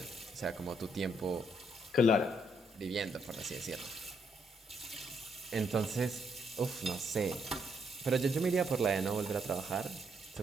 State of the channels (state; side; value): normal; both; correlation 0.74